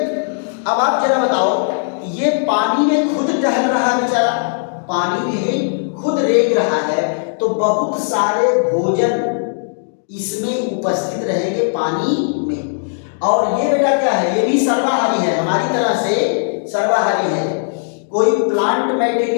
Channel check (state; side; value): silent; right; digital silence